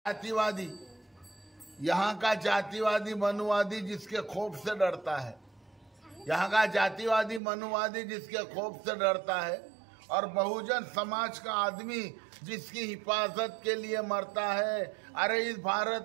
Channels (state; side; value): drops out; left; at 7.4 s